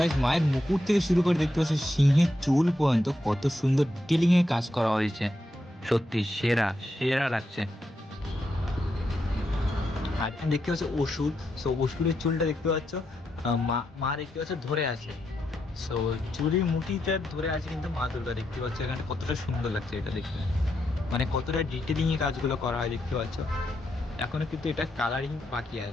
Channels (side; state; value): both; normal; correlation 0.83